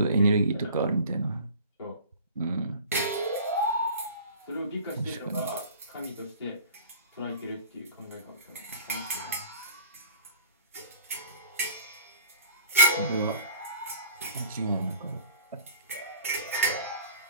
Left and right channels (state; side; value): inverted; both; correlation -0.47